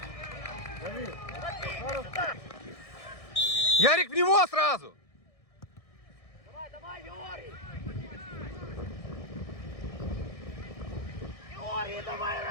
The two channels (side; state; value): right; late; 1.6 ms